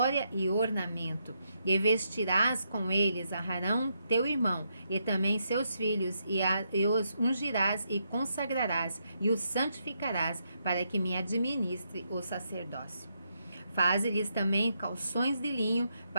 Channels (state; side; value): inverted; both; correlation -0.79